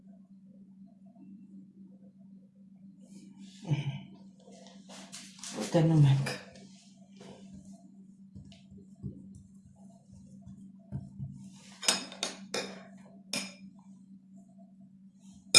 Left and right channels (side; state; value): both; identical; correlation 1.00